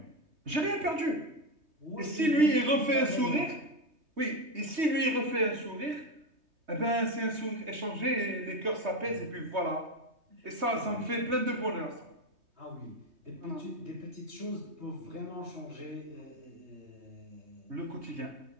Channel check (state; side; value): late; left; 3.2 ms